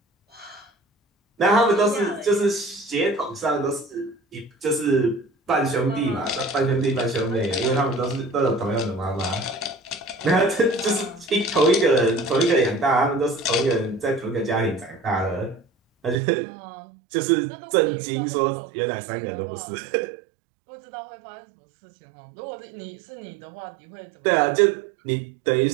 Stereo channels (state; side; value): drops out; left; at 16.2 s